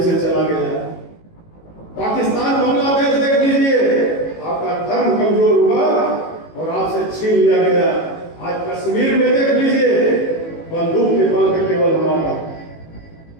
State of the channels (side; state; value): right; late; 18 ms